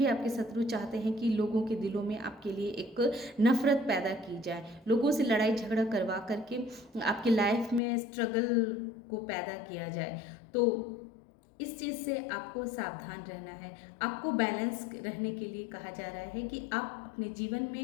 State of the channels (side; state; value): right; drops out; at 7.8 s